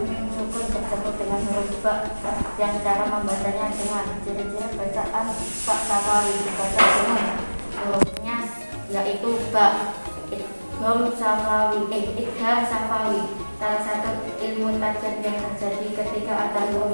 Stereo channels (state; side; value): inverted; both; correlation -1.00